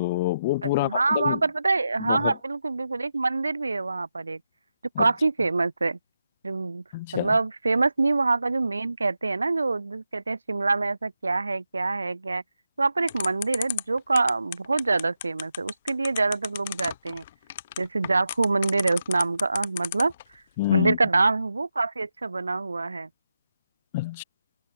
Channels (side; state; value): both; inverted; correlation -0.88